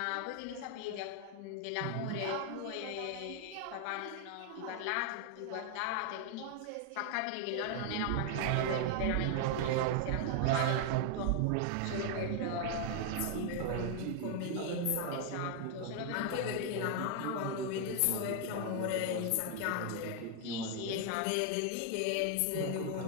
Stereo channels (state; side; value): different; both; correlation 0.00